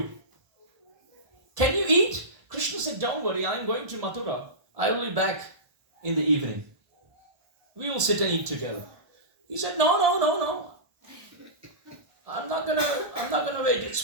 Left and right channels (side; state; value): left; late; 1.7 ms